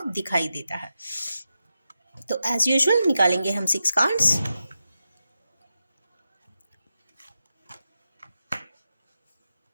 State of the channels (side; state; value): both; inverted; correlation -0.89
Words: दिखाई देता है। तो एज यूजुअल निकालेंगे हम 6 कार्ड्स।